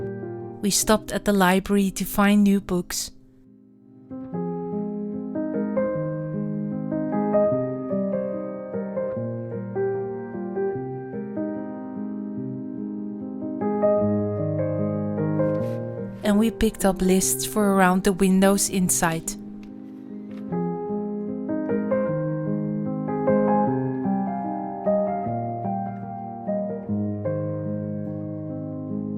We stopped at the library to find new books. And we picked up lists for around the windows inside.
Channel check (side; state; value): both; identical; correlation 1.00